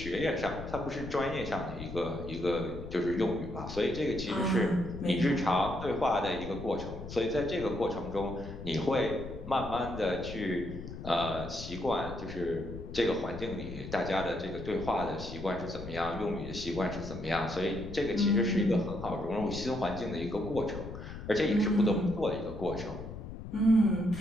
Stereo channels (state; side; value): noise; left; rumble, 10 dB below the sound